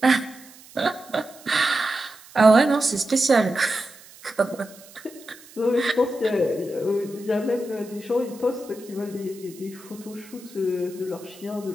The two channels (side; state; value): right; noise; hiss, 22 dB below the sound